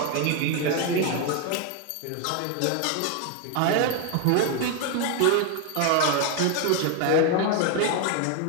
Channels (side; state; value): both; different; correlation 0.01